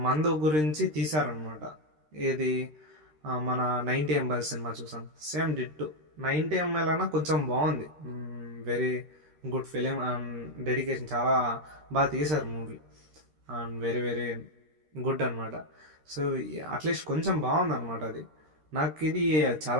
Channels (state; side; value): late; left; 13 ms